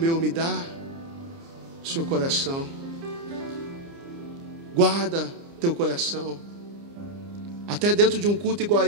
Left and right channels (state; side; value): late; left; 30 ms